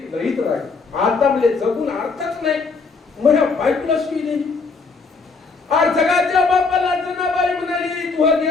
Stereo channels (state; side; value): quieter; right; 4.4 dB